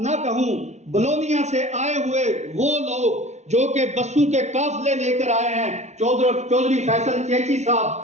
کہوں، بلونیا سے آئے ہوئے وہ لوگ جو کہ بسوں کے قافلے لے کر آئے ہیں، چودھری فیصل چیچی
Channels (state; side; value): late; left; 0.33 ms